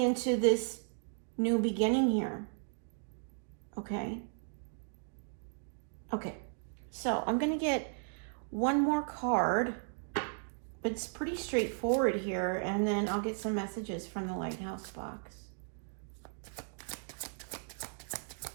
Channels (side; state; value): left; silent; digital silence